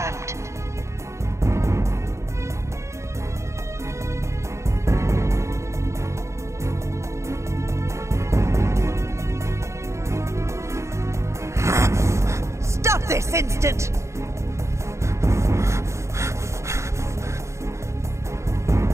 Stop this instant!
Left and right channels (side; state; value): left; late; 0.14 ms